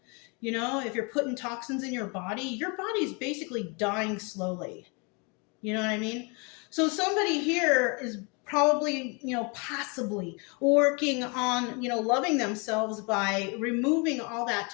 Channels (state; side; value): quieter; right; 32.0 dB